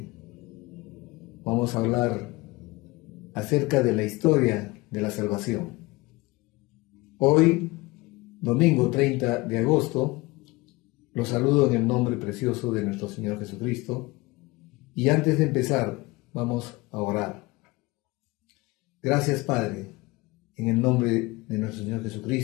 Vamos a hablar acerca de la historia de la salvación. Hoy, domingo 30 de agosto, los saludo en el nombre precioso de nuestro Señor Jesucristo. Y antes de empezar, vamos a orar. Gracias, Padre, en el nombre de nuestro Señor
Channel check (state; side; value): quieter; right; 22.5 dB